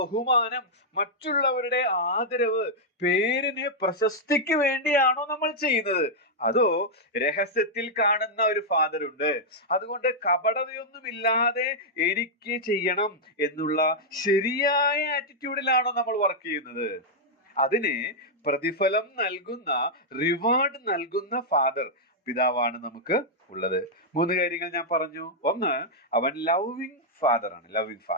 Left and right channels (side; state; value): both; normal; correlation -0.05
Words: മറ്റുള്ളവരുടെ ആദരവ്, പേരിന് പ്രശസ്തിക്ക് വേണ്ടിയാണോ നമ്മൾ ചെയ്യുന്നത്? അതോ രഹസ്യത്തിൽ കാണുന്ന ഒരു ഫാദർ ഉണ്ട്, അതുകൊണ്ട് കപടതയൊന്നുമില്ലാതെ എനിക്ക് ചെയ്യണം എന്നുള്ള ശരിയായ ആറ്റിറ്റ്യൂഡിലാണോ നമ്മൾ വർക്ക് ചെയ്യുന്നത്? അതിന് പ്രതിഫലം നൽകുന്ന, റിവാർഡ് നൽകുന്ന ഫാദർ, പിതാവാണ് നമുക്ക് ഉള്ളത്. 3 കാര്യങ്ങൾ ഞാൻ പറഞ്ഞു. ഒന്ന്, അവൻ ലവിങ് ഫാദർ ആണ്. Loving